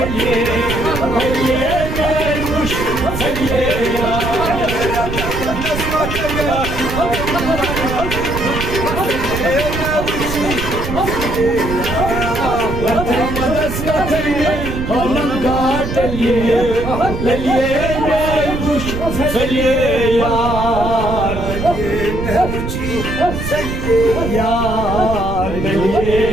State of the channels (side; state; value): right; noise; rumble, 5 dB below the sound